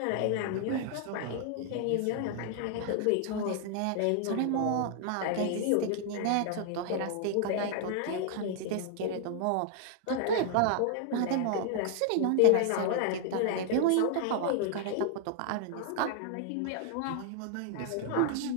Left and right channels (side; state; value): both; different; correlation 0.00